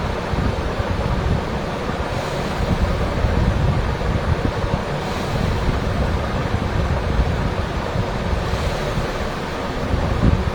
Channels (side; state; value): both; identical; correlation 1.00